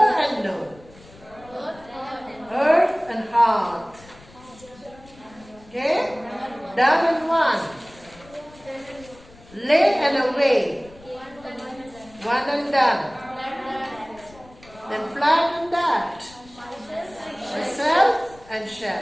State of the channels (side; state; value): left; noise; rumble, 23 dB below the sound